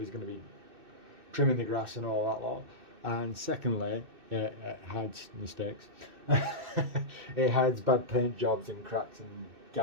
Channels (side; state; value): left; late; 2.6 ms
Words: going to be trimming the grass and all that lot. And secondly, it hides mistakes. It hides bad paint jobs and cracks and